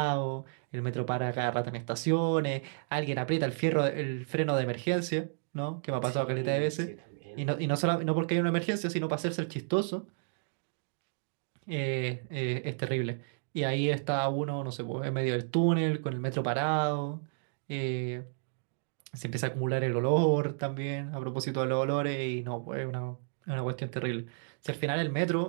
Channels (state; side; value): silent; left; digital silence